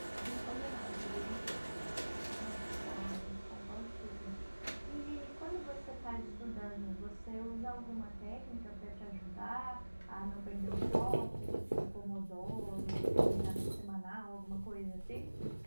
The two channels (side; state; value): both; inverted; correlation -1.00